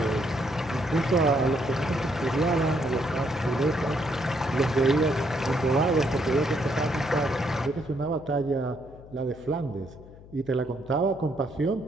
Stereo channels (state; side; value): noise; left; hum, 20 dB below the sound